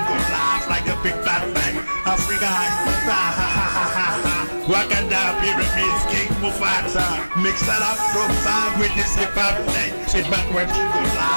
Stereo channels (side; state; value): both; inverted; correlation -1.00